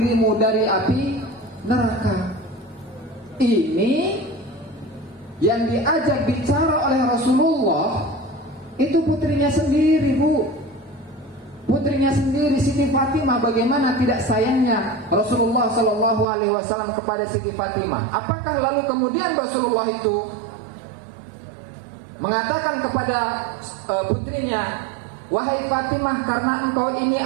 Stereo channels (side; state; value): left; drops out; at 16.2 s